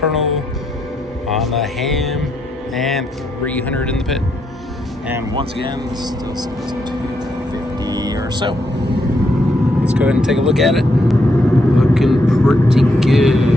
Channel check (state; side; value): normal; both; correlation 0.78